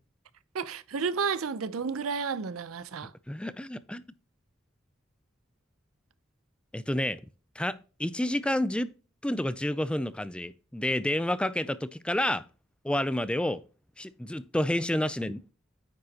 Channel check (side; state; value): both; normal; correlation 0.73